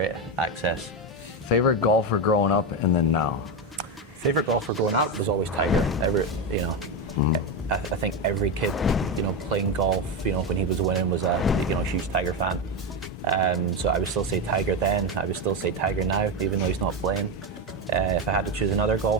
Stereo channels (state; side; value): normal; both; correlation 0.12